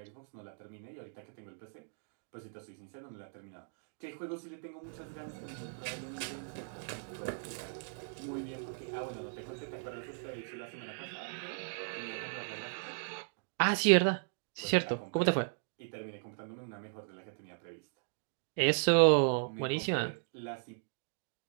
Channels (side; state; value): left; silent; digital silence